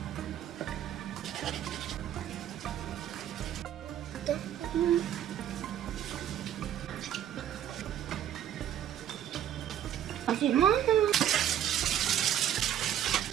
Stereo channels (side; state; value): left; quieter; 10.7 dB